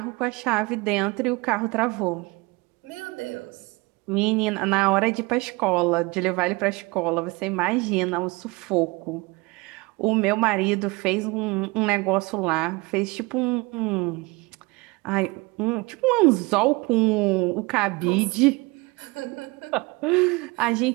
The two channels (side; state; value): left; quieter; 24.9 dB